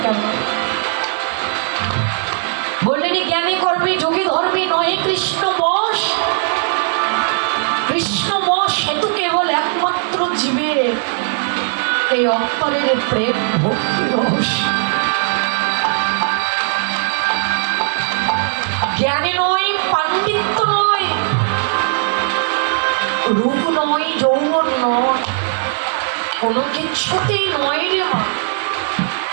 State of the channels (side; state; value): left; silent; digital silence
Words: কেন, বললেন জ্ঞানে কর্মে যোগে ধর্মে নহে কৃষ্ণ বশ, কৃষ্ণ বশ হেতু কেবল একমাত্র জীবের এই অন্তরের প্রেম ভক্তি রহস্য। জ্ঞানে নয়, পাণ্ডিত্য নয়, রূপ নয়, যৌবন নয়, কোনো কিছুতেই নয় রে মা।